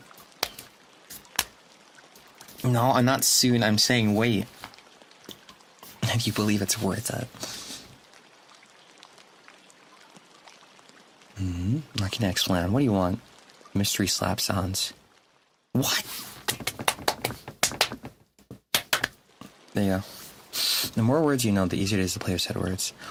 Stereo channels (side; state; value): both; identical; correlation 1.00